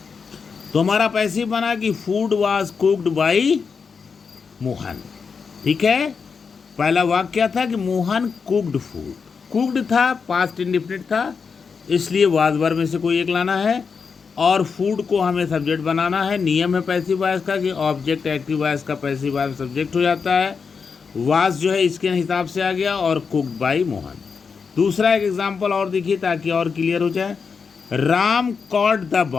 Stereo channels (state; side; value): quieter; right; 5.6 dB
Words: तो हमारा पैसिव बना कि food was cooked bye Mohan. ठीक है, पहला वाक्य क्या था कि मोहन कुक्ड फूड। कुक्ड था, पास्ट इंडेफिनिट था, इसलिए वाज वर्ब में से कोई एक लाना है, और फूड को हमें सब्जेक्ट बनाना है। नियम है पैसिव वॉइस का कि ऑब्जेक्ट एक्टिव वॉइस का पैसिव वॉइस सब्जेक्ट हो जाता है। वाज जो है इसके हिसाब से आ गया, और कुक्ड बाय मोहन। दूसरा एक एग्जाम्पल और देखिए ताकि और क्लियर हो जाए। Ram cot the